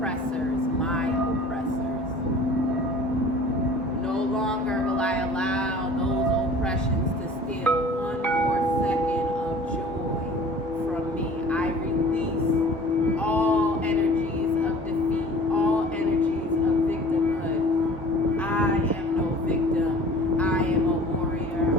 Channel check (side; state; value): both; normal; correlation 0.46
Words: my oppressors. No longer will I allow those oppressions to steal one more second of joy from me. I release all energies of defeat, all energies of victimhood. I am no victim. I am a warrior.